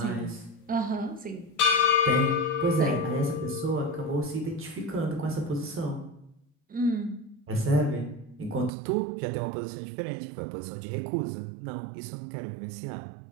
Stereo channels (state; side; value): drops out; left; at 8.7 s